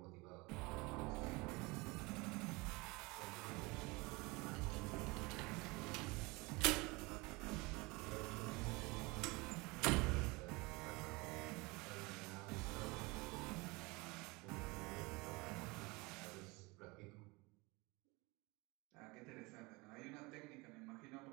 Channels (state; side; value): quieter; left; 25.0 dB